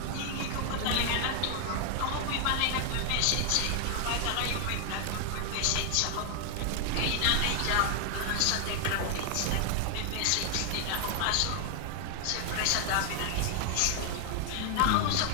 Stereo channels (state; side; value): different; both; correlation 0.00